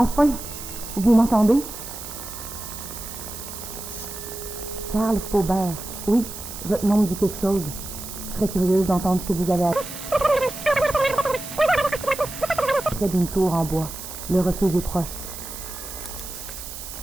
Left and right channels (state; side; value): noise; right; hiss, 10 dB below the sound